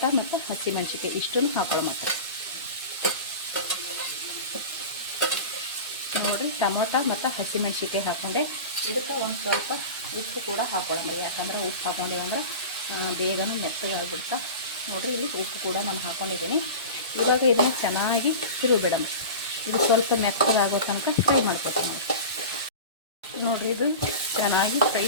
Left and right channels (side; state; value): both; inverted; correlation -0.31